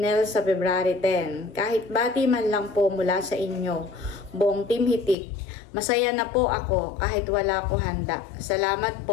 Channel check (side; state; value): right; drops out; at 5.2 s